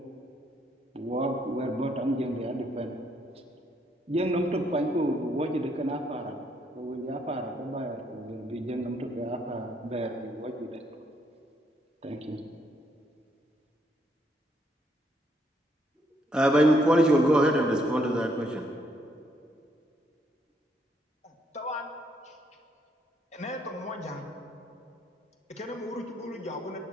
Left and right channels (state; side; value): normal; both; correlation 0.71